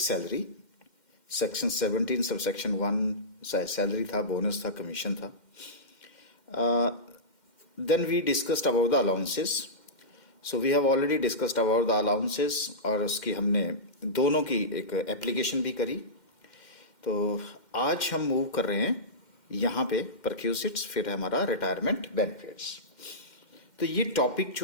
salary, section 17 sub section 1 salary था, बोनस था, कमीशन था. Then we discussed about the allowances. So we have already discussed about the allowances और उसकी हमने दोनों की एक एप्लीकेशन भी करी. तो आज हम मूव कर रहे हैं यहाँ पे परक्यूसिट्स, फिर हमारा रिटायरमेंट बेनिफिट्स. तो ये टॉपिक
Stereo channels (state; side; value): late; right; 2.1 ms